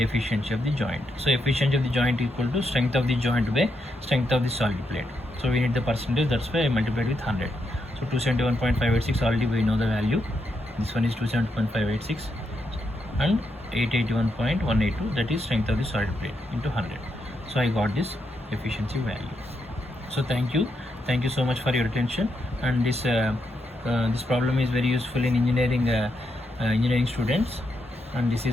of the joint. So efficiency of the joint equal to strength of the joint by strength of the solid plate. So we need the percentage, that's why I multiplied with 100. So 271.586, already we know the value. This one is 271.586 and 881.182, that is strength of the solid plate into 100. So I got this efficiency value. So thank you so much for your attention, and this problem is very useful in engineering students, and this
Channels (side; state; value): both; normal; correlation 0.81